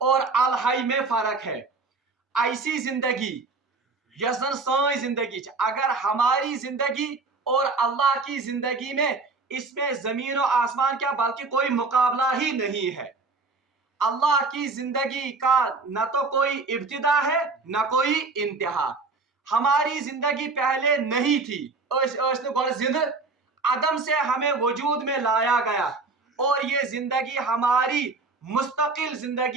और अल हय में फर्क है। ऐसी जिंदगी यसन साई जिंदगी, अगर हमारी जिंदगी और अल्लाह की जिंदगी में, इसमें जमीन और आसमान क्या बल्कि कोई मुकाबला ही नहीं है। अल्लाह की जिंदगी का न तो कोई इब्तिदा है न कोई इंतहा। हमारी जिंदगी पहले नहीं थी, जिंद अदम से हमें वजूद में लाया गया, और ये जिंदगी हमारी मुस्तकिल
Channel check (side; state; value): left; quieter; 4.0 dB